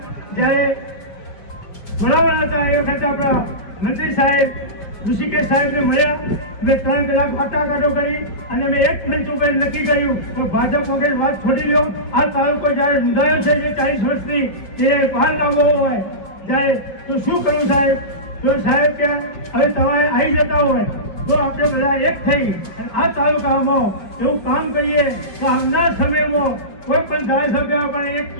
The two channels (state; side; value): late; right; 5.2 ms